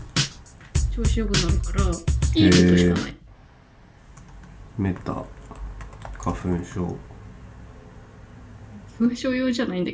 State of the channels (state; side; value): identical; both; correlation 1.00